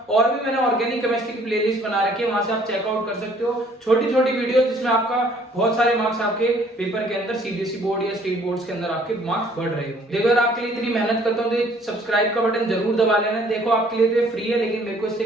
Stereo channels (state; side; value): normal; both; correlation 0.59